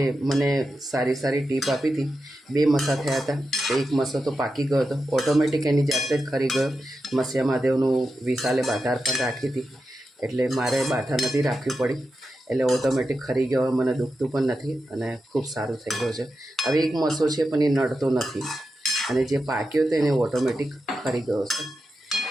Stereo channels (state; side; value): normal; both; correlation 0.89